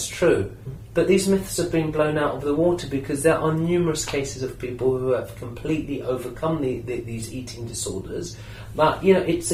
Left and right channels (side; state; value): both; identical; correlation 1.00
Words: true. But these myths have been blown out of the water, because there are numerous cases of people who have completely overcome these eating disorders. But, it's